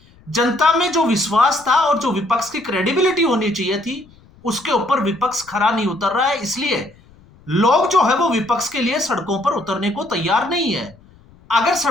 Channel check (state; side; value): noise; left; rumble, 27 dB below the sound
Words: जनता में जो विश्वास था और जो विपक्ष की क्रेडिबिलिटी होनी चाहिए थी, उसके ऊपर विपक्ष खरा नहीं उतर रहा है। इसलिए लोग जो है वो विपक्ष के लिए सड़कों पर उतरने को तैयार नहीं है। अगर